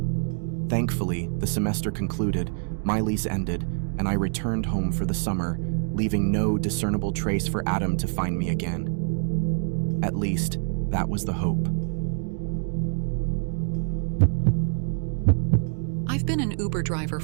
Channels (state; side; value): silent; left; 61 dB below the other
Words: Thankfully, the semester concluded, my lease ended, and I returned home for the summer, leaving no discernible trace for Adam to find me again. At least, that was the hope. I've been an Uber driver